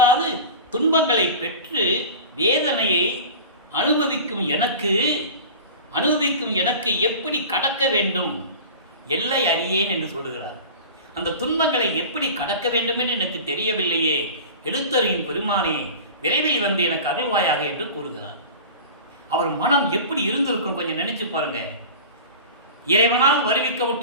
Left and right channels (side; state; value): both; inverted; correlation -0.35